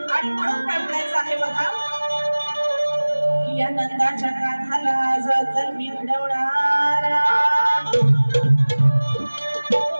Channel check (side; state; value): both; inverted; correlation -1.00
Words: आणि म्हणून काय म्हणायचं आहे बघा, या नंदाच्या काठाला जतन मी घडवणारा,